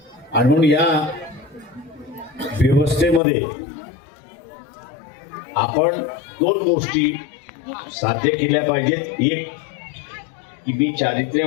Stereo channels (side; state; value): right; drops out; at 3.2 s